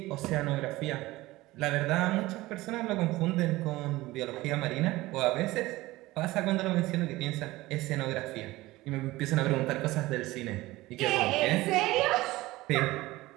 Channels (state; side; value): quieter; left; 18.7 dB